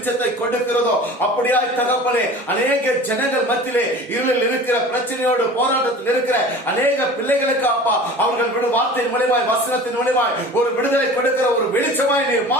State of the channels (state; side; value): normal; both; correlation 0.40